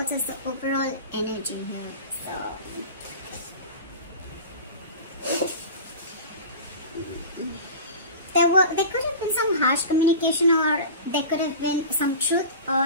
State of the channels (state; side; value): inverted; both; correlation -0.33